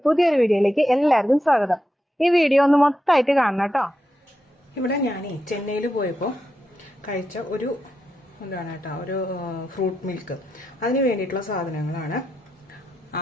പുതിയൊരു വീഡിയോയിലേക്ക് എല്ലാവർക്കും സ്വാഗതം. ഈ വീഡിയോ ഒന്ന് മൊത്തമായിട്ട് കാണണം കേട്ടോ. ഇവിടെ ഞാൻ ചെന്നൈയിൽ പോയപ്പോൾ കഴിച്ച ഒരു ഒരു ഫ്രൂട്ട് മിൽക്ക്, അതിന് വേണ്ടിയിട്ടുള്ള സാധനങ്ങളാണ്.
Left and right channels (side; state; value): both; normal; correlation 0.86